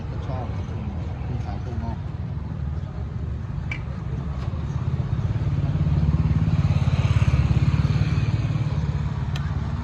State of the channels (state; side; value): identical; both; correlation 1.00